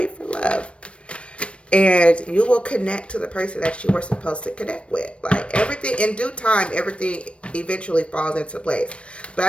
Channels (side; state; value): right; late; 0.060 ms